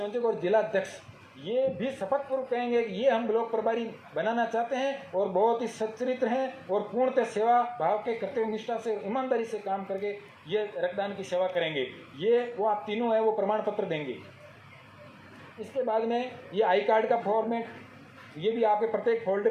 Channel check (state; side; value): identical; both; correlation 1.00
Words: और जिला अध्यक्ष ये भी शपथ पूर्वक कहेंगे कि ये हम ब्लॉक प्रभारी बनाना चाहते हैं और बहुत ही सच्चरित्र हैं और पूर्णतः सेवा भाव के कर्तव्य निष्ठा से, ईमानदारी से काम करके ये रक्तदान की सेवा करेंगे। ये वो आप तीनों है वो प्रमाण पत्र देंगे। इसके बाद में ये आई कार्ड का फॉर्मेट, ये भी आपके प्रत्येक